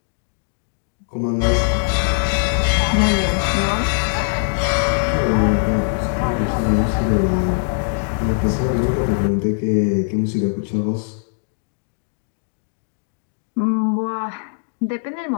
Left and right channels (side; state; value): right; silent; digital silence